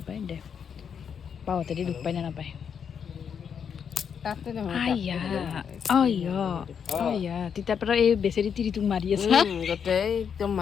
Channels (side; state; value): right; quieter; 7.3 dB